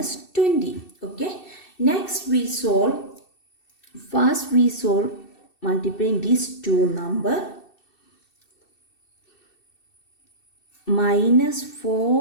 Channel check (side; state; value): right; late; 2.7 ms